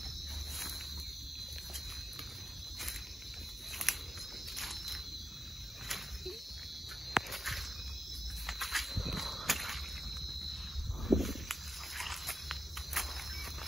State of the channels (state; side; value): normal; both; correlation 0.89